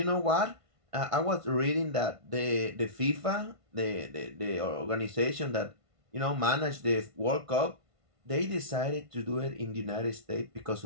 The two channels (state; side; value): late; left; 1.5 ms